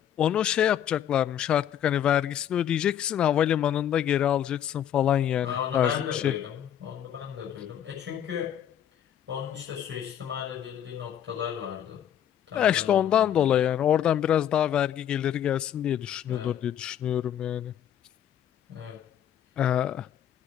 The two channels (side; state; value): right; quieter; 10.1 dB